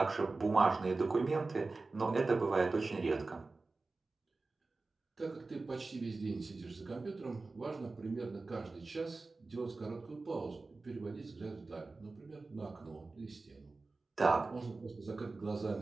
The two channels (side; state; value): left; quieter; 3.6 dB